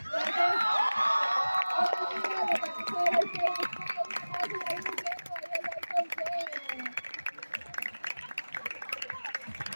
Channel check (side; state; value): both; inverted; correlation -1.00